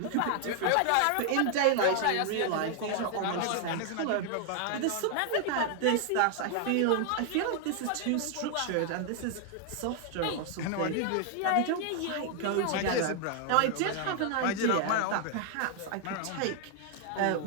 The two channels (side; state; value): both; different; correlation 0.00